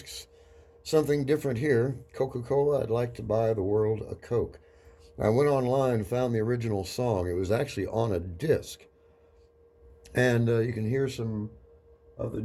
something different here. Coca-Cola, I'd like to buy the world a Coke. I went online and found the original song. It was actually on a disc. And you can hear some of the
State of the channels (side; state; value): both; identical; correlation 1.00